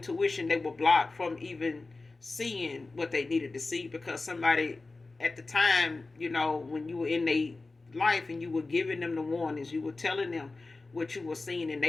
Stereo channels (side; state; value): right; quieter; 3.5 dB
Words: they were blocked from even seeing what they needed to see, because somebody at the time, when you were in their life and you were giving them the warnings, you were telling them what you were seeing, and